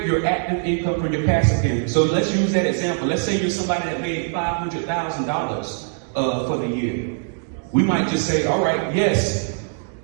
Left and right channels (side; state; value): left; silent; 64 dB below the other